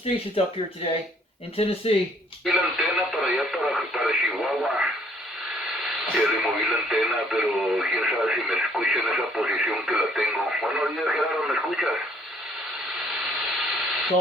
up here today in Tennessee. Ya removí la antena, pero quién sabe si me escucha en esa posición que la tengo. Buenos días, Gerardo, ¿me escuchas?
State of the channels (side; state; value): both; normal; correlation 0.63